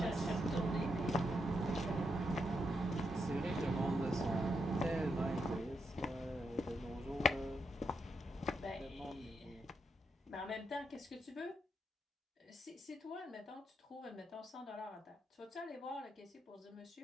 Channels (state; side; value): normal; both; correlation 0.81